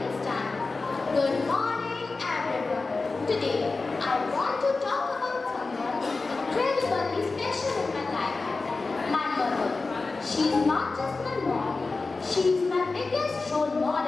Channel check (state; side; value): quieter; right; 3.8 dB